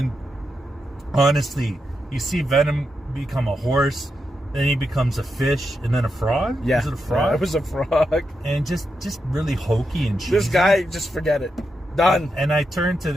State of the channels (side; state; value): both; normal; correlation 0.85